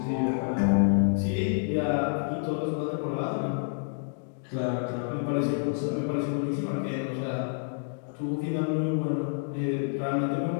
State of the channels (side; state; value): right; silent; digital silence